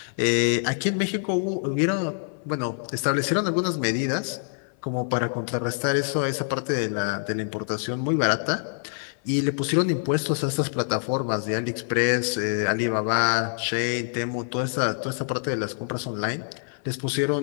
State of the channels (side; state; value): right; silent; 55 dB below the other